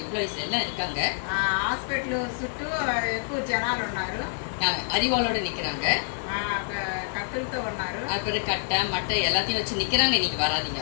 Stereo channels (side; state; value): right; silent; digital silence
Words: எம்ப்ளாயிஸ் எல்லாம் இருக்காங்க. హాస్పిటల్ చుట్టూ ఎక్కువ జనాలు ఉన్నారు, அறிவாளோட நிக்கிறாங்க, కత్తులతో ఉన్నారు, அப்புறம் கட்டை மட்டை எல்லாத்தையும் வச்சு நிக்கிறாங்க, இன்னைக்கு வராதீங்க